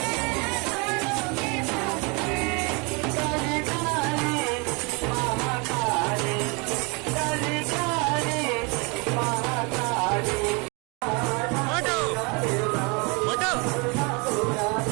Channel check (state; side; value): quieter; left; 30.7 dB